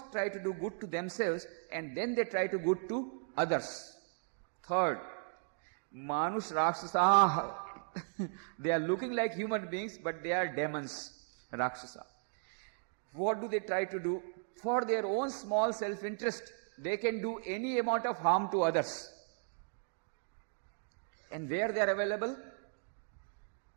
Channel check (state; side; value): silent; left; digital silence